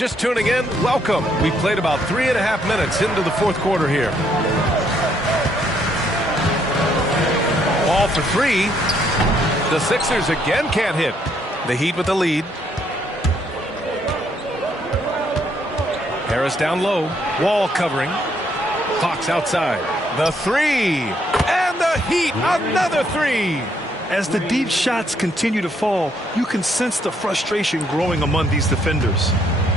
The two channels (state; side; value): normal; both; correlation 0.71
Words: tuning in, welcome. We played about 3.5 minutes into the fourth quarter here. Ball for three. The Sixers again can't hit. The Heat with the lead. Harris down low. Wall covering. Fox outside. The three. And the Heat, another three. As the deep shots continue to fall, you can sense the frustration growing among these defenders.